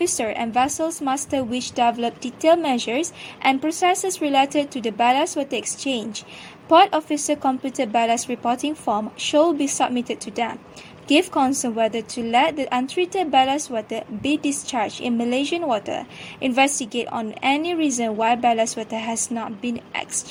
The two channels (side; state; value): both; identical; correlation 1.00